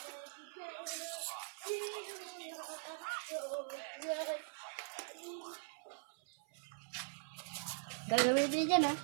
Gagawin din dyan, ha?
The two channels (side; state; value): left; silent; 50 dB below the other